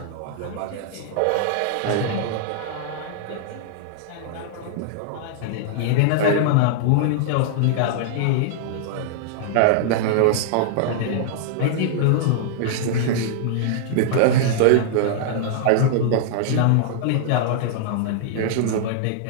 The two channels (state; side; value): different; both; correlation -0.01